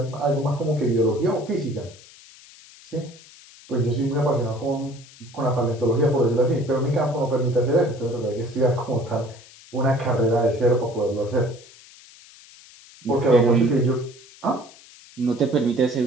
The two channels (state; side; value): noise; left; hiss, 22 dB below the sound